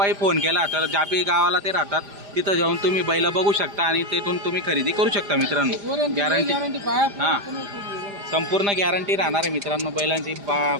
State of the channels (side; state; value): left; late; 5.0 ms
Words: फोन केला तर जापी गावाला ते राहतात तिथं जाऊन तुम्ही बैल बघू शकता आणि तेथून तुम्ही खरेदी करू शकता मित्रांनो। गॅरंटी हां संपूर्ण गॅरंटी राहणार आहे मित्रांनो। बैलांची